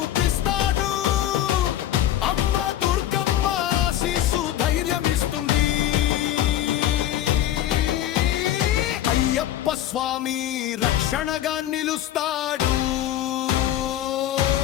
అమ్మ దుర్గమ్మ ఆశీస్సు ధైర్యమిస్తుంది. అయ్యప్ప స్వామి రక్షణగా నిలుస్తాడు.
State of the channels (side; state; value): right; quieter; 12.2 dB